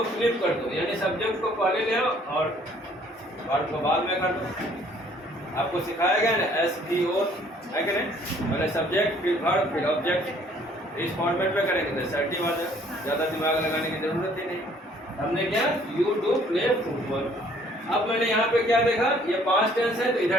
फ्लिप कर दो, यानी सब्जेक्ट को पहले ले आओ और वर्ब को बाद में कर दो। आपको सिखाया गया ना SVO, है कि नहीं? पहले सब्जेक्ट फिर वर्ब फिर ऑब्जेक्ट, इस फॉर्मेट में करेंगे तो असर्टिव आ जाए, ज़्यादा दिमाग लगाने की जरूरत ही नहीं। हमने क्या यू डू प्ले फुटबॉल। अब मैंने यहाँ पे क्या देखा, ये पास्ट टेंस है तो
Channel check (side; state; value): both; normal; correlation 0.60